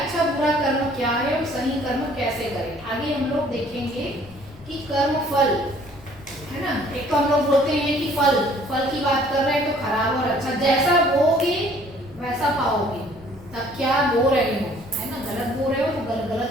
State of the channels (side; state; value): left; noise; rumble, 21 dB below the sound